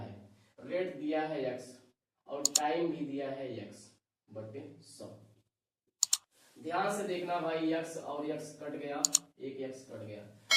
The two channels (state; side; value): identical; both; correlation 1.00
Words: रेट दिया है x और टाइम भी दिया है x बटे 100। ध्यान से देखना भाई, x और x कट गया, एक x कट गया।